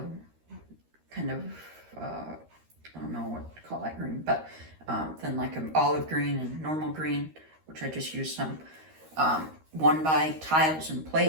kind of, I don't know what to call that green, but then like an olive green and normal green, which I just used some 1x tiles and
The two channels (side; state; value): left; late; 13 ms